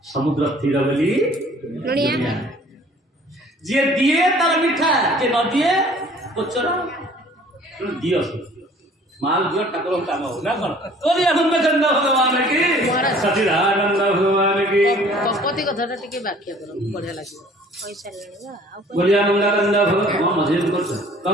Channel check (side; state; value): both; normal; correlation 0.53